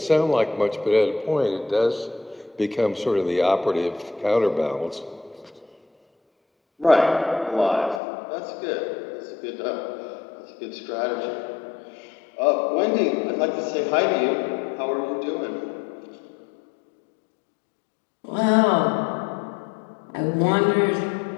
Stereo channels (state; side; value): drops out; right; at 8.0 s